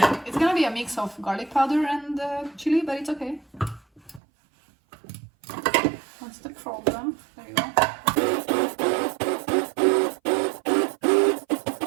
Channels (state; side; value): drops out; left; at 4.2 s